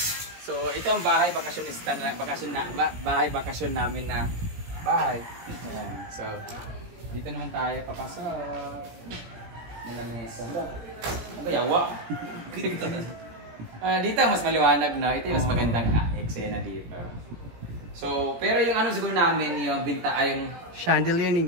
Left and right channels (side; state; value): left; late; 17 ms